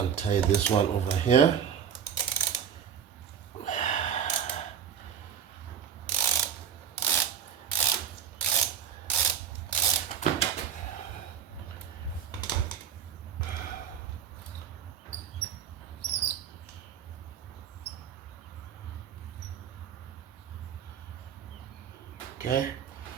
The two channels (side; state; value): left; quieter; 8.3 dB